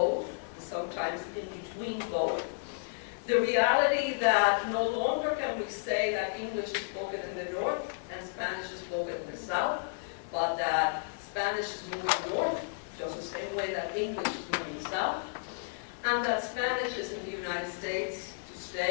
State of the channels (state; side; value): silent; right; 56 dB below the other